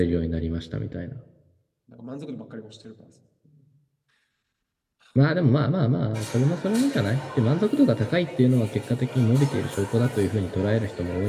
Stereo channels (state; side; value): identical; both; correlation 1.00